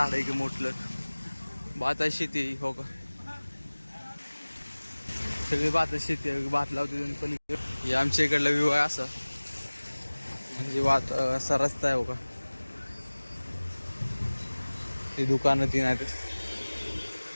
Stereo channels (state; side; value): inverted; both; correlation -1.00